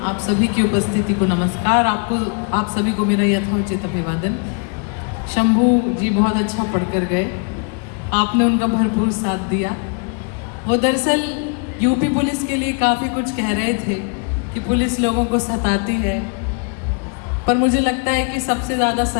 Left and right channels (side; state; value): right; quieter; 39.0 dB